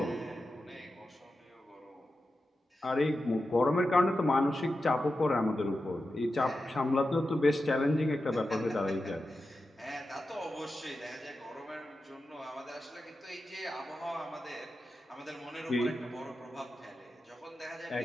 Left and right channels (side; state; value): both; normal; correlation 0.91